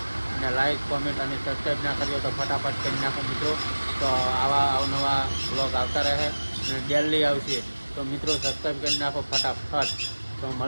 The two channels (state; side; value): inverted; both; correlation -1.00